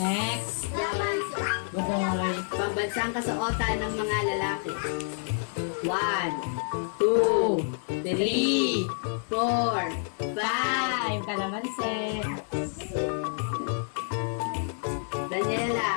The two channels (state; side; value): silent; right; digital silence